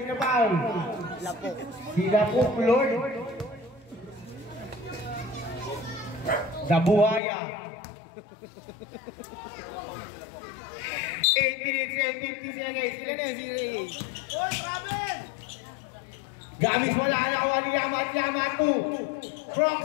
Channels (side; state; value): right; drops out; at 7.2 s